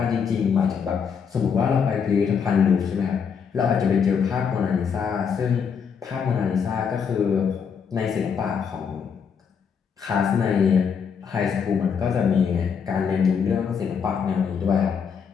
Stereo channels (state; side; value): quieter; right; 6.7 dB